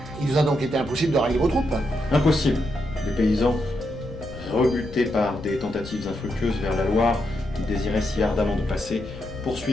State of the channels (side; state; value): left; noise; rumble, 16 dB below the sound